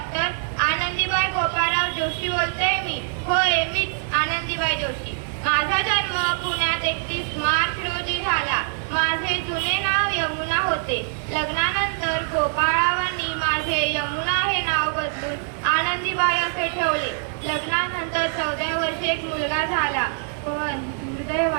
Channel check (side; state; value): left; silent; digital silence